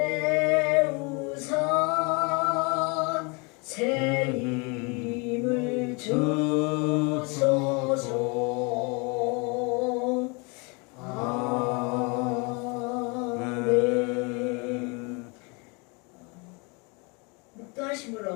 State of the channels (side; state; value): right; quieter; 30.9 dB